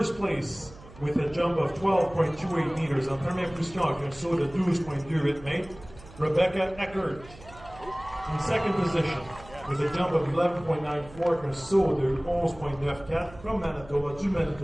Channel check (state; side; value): noise; right; hum, 20 dB below the sound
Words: place with a jump of 12.28 meters en première position avec un saut de 12.28 mètres, Rebecca Eckert. In second position with a jump of 11.94 avec un saut de 11.94 from Manitoba to